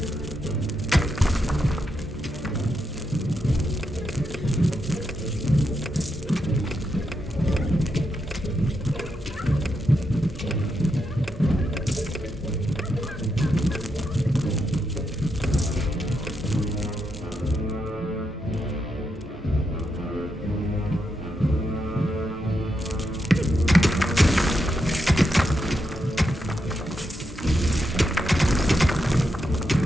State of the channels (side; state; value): both; normal; correlation 0.83